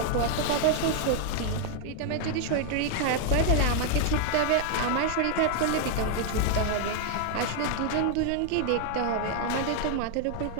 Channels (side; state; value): both; different; correlation 0.00